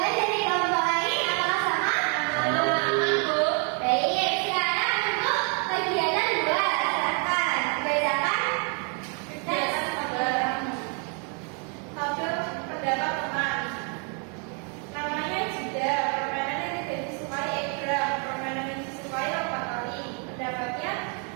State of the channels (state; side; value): quieter; left; 38.5 dB